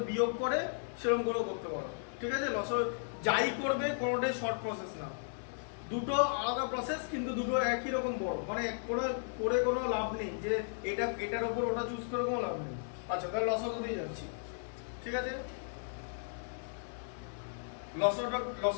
বিয়োগ করে সেরকম করেও করতে পারো, ঠিক আছে? যাই করবে কোনোটাই শর্ট প্রসেস না, দুটো আলাদা প্রসেস, কিন্তু দুটো একই রকম বড়। মানে করে কোনো লাভ নেই যে এটার উপর ওটা চুজ করে কোনো লাভ নেই। আচ্ছা, তাহলে লসাগু দিয়ে যাচ্ছি, ঠিক আছে?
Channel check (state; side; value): silent; right; digital silence